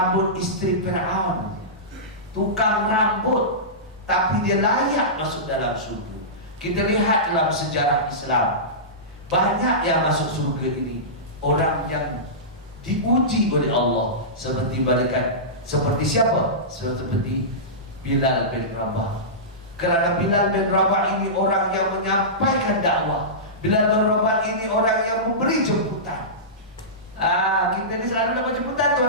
isteri Fir'aun, tukang rambut, tapi dia layak masuk dalam surga. Kita lihat dalam sejarah Islam, banyak yang masuk surga ini orang yang diuji oleh Allah, seperti malaikat. Seperti siapa? Seperti Bilal bin Rabah. Kerana Bilal bin Rabah ini orang yang menyampaikan dakwah. Bilal bin Rabah ini orang yang memberi jemputan. Kita ni selalu dapat jemputan,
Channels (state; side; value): normal; both; correlation -0.18